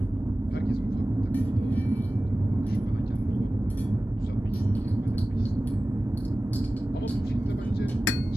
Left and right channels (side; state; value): both; normal; correlation 0.96